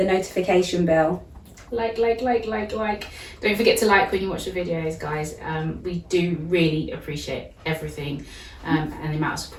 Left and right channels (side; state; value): both; identical; correlation 1.00